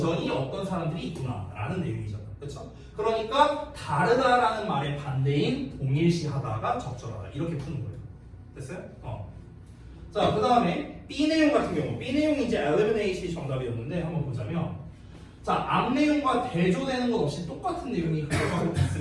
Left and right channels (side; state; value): both; identical; correlation 1.00